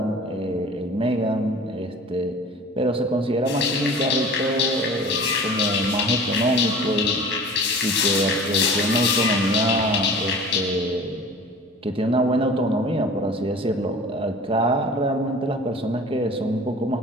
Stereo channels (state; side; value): normal; both; correlation 0.42